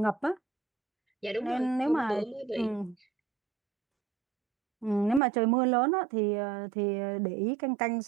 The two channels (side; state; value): left; drops out; at 5.2 s